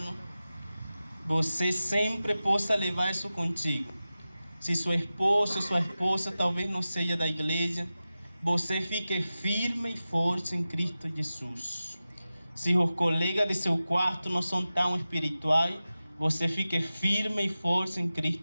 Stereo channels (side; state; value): both; inverted; correlation -0.95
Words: você sempre possa levar isso contigo. Se sua esposa talvez não seja da igreja, você fique firme e forte em Cristo Jesus. Se os colegas de seu quarto não são tão espirituais, você fique firme e forte em